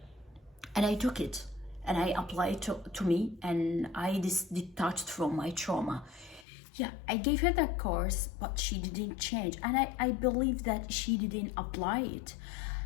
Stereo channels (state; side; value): drops out; right; at 6.5 s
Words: and I took it, and I applied to me, and I detached from my trauma. Yeah, I gave her that course, but she didn't change. And I believe that she didn't apply it.